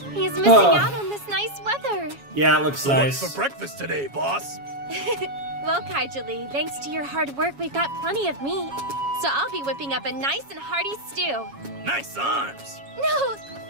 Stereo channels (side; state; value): left; late; 7.2 ms